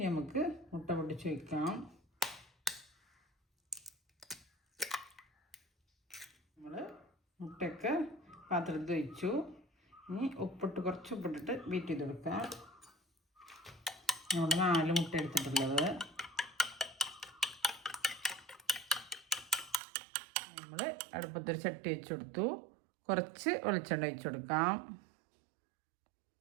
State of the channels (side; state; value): left; drops out; at 19.8 s